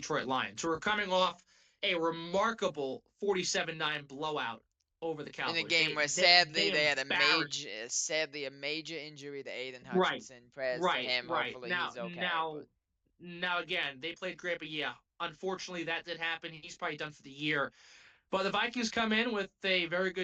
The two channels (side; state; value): both; identical; correlation 1.00